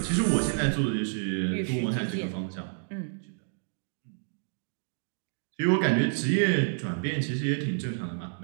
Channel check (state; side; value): silent; left; digital silence